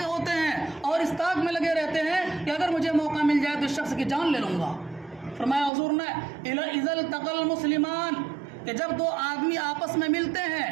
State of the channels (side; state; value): left; drops out; at 5.7 s